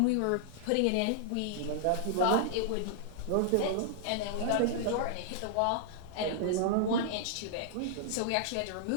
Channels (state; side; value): different; both; correlation -0.01